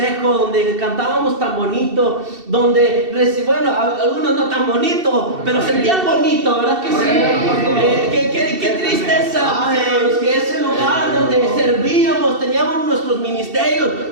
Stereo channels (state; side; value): late; left; 2.7 ms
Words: donde cantábamos tan bonito, donde, bueno, algunos no tan bonito, pero sentían bonito, ¿verdad que sí? Qué tristeza, mis hermanos, que ese lugar donde servíamos, teníamos nuestros ministerios,